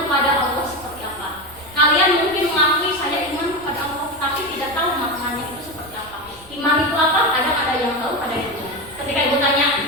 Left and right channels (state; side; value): noise; right; rumble, 23 dB below the sound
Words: Allah seperti apa. Kalian mungkin mengakui saya iman kepada Allah, tapi tidak tahu maknanya itu seperti apa. Iman itu apa? Kadang ada yang tahu, ada yang tidak. Ketika ibu tanya,